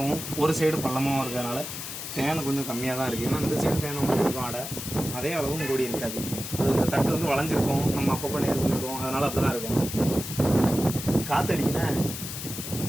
ஒரு சைடு பள்ளமாகவும் இருக்கிறதுனால தேனை கொஞ்சம் கம்மியாக தான் இருக்குது. ஏன்னா இந்த சைடு தேனை இருக்கும் ஆடை, அதே அளவும் கூடி இருக்காது. அது இந்த தட்டு வந்து வளைஞ்சிருக்கும், நம்ம அப்பப்போ நேர் பண்ணிடுவோம், அதனால் அப்படி தான் இருக்கும். காற்றடிக்கினா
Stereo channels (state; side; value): noise; left; hiss, 7 dB below the sound